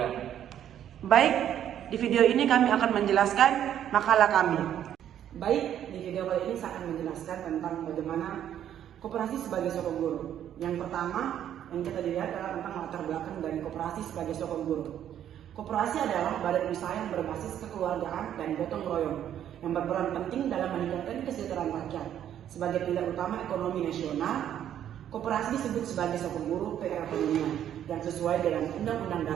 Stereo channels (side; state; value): left; quieter; 10.4 dB